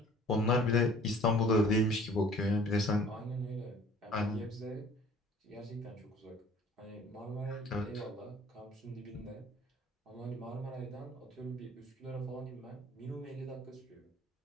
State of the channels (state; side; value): normal; both; correlation 0.51